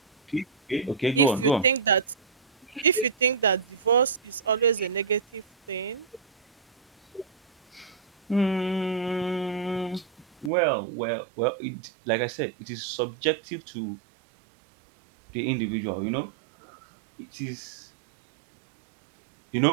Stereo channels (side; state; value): left; drops out; at 10.5 s